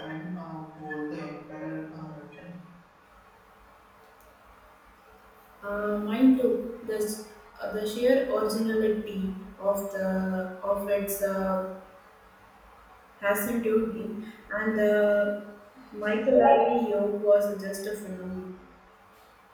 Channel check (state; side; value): identical; both; correlation 1.00